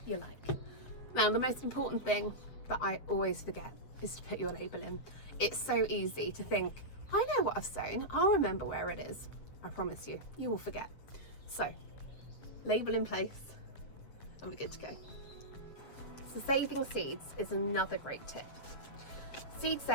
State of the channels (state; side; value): late; right; 7.6 ms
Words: you like. Now, the most important thing that I always forget is to put your label in. It's so easy to think, I know what I've sown, I'll remember where it is. I promise you, you will forget. So, label in place, and we're good to go. So saving seeds is another great tip. Seed